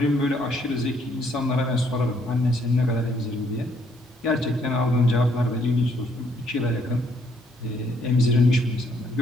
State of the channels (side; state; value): both; normal; correlation 0.68